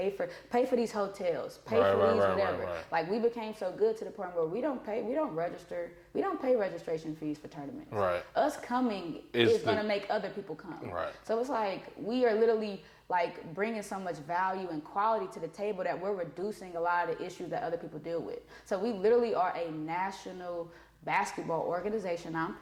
for these hotels, pay whatever. Like we became so good to the point where we don't pay registration fees for tournaments. Right. Us coming is going to make other people come. Right. So it's like we are literally like bringing so much value and quality to the table that we're reducing a lot of the issues that other people deal with. So we literally are a national basketball organization,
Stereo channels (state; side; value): identical; both; correlation 1.00